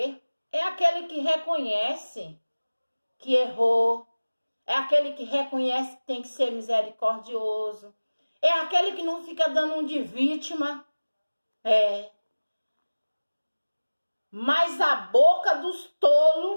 É aquele que reconhece que errou. É aquele que reconhece que tem que ser misericordioso. É aquele que não fica dando um de vítima. Mas a boca dos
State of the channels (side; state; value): both; inverted; correlation -1.00